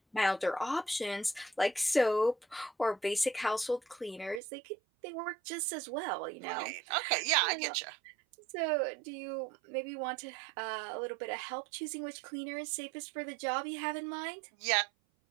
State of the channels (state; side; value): drops out; left; at 4.4 s